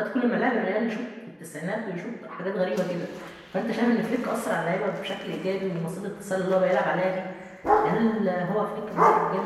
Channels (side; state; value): both; identical; correlation 1.00